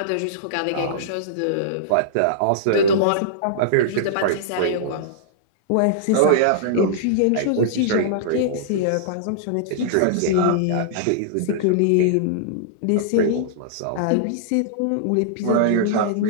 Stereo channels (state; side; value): different; both; correlation -0.02